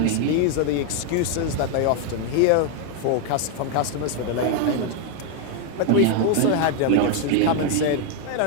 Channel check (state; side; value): different; both; correlation 0.00